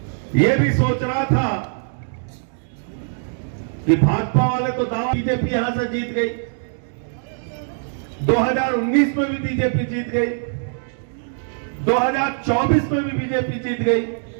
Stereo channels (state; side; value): silent; left; digital silence